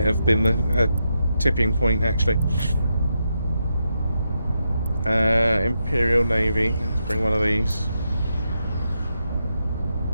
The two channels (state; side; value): inverted; both; correlation -0.84